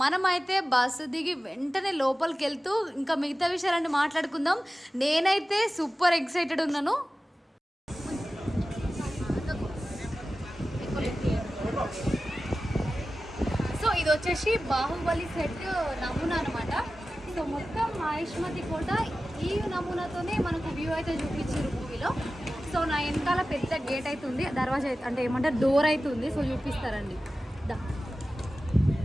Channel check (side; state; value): both; normal; correlation 0.95